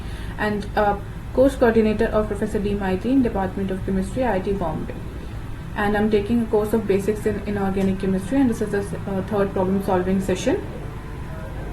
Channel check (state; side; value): identical; both; correlation 1.00